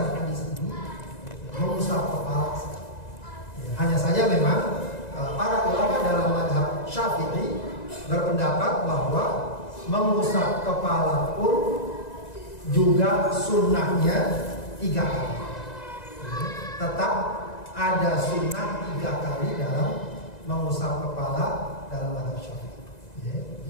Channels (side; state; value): right; late; 1.9 ms